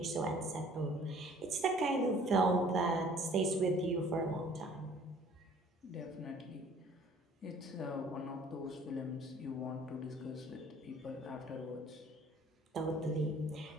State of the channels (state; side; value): normal; both; correlation 0.54